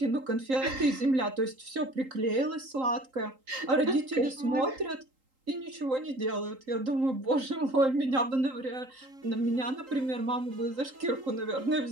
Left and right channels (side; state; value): left; late; 3.8 ms